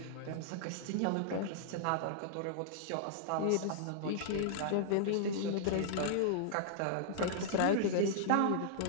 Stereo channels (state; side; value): different; both; correlation -0.01